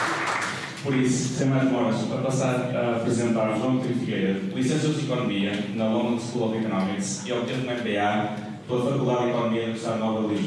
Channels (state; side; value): identical; both; correlation 1.00